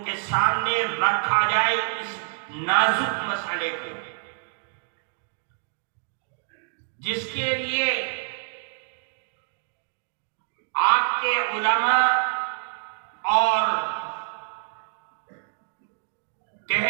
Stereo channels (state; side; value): silent; left; digital silence